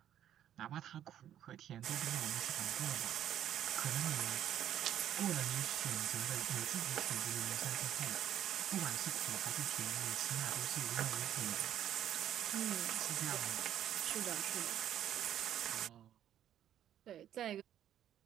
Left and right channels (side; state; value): left; quieter; 10.9 dB